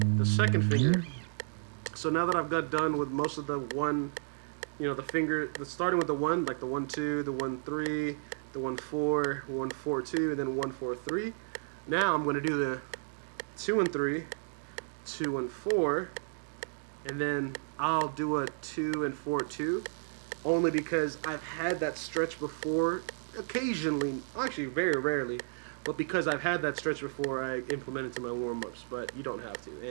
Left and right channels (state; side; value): silent; left; digital silence